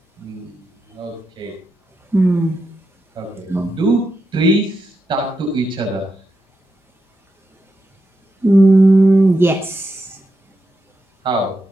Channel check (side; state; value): both; normal; correlation 0.85